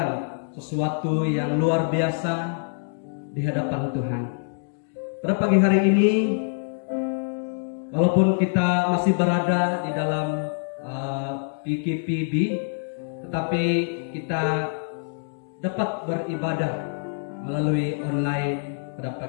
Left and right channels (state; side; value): silent; right; digital silence